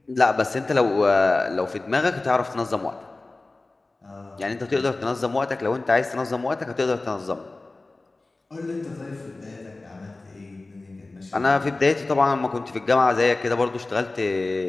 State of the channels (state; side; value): quieter; right; 3.2 dB